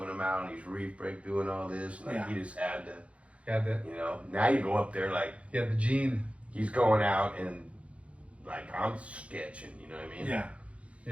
him out, and he's reef break doing all this, and like Yeah. he just had to, Got the you know. Now you go up there like gene. he's going out and like I'm sketching. You know what I mean? Yeah.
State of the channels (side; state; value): left; late; 0.062 ms